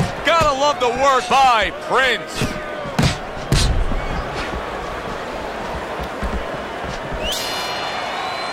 Gotta love the work by Prince.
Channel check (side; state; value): both; identical; correlation 1.00